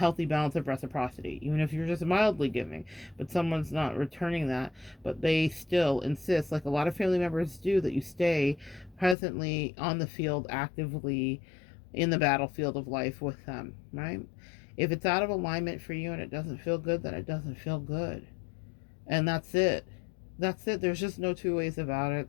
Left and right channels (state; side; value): drops out; right; at 9.2 s